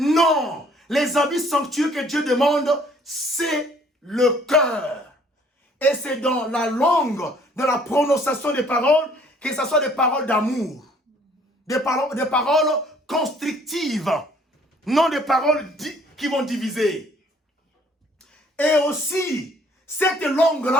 Les habits sanctueux que Dieu demande, c'est le cœur. Et c'est dans la langue, dans la prononciation des paroles, que ce soit des paroles d'amour. Des paroles constructives. Non des paroles qui vont diviser. Et aussi, cette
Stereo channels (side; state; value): both; normal; correlation 0.59